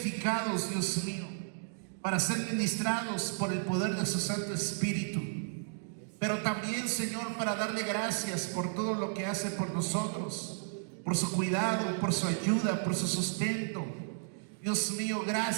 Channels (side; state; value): left; silent; digital silence